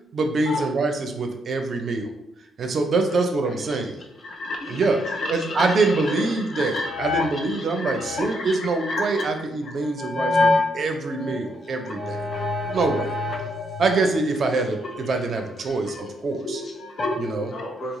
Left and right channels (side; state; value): both; normal; correlation 0.76